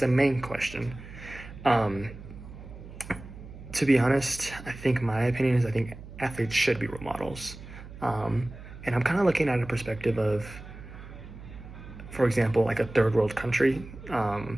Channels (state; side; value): noise; right; hum, 15 dB below the sound